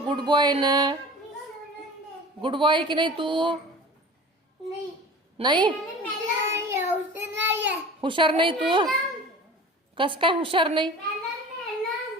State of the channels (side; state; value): both; normal; correlation 0.39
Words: गुड बॉय ना? गुड बॉय आहे की नाही तू? नाही हुशार नाही तू? कस काय हुशार नाही?